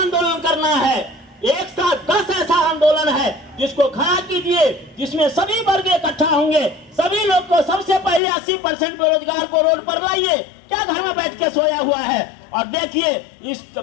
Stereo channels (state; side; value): drops out; right; at 8.2 s